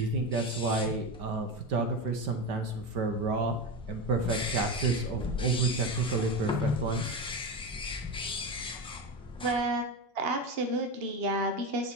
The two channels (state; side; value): normal; both; correlation 0.19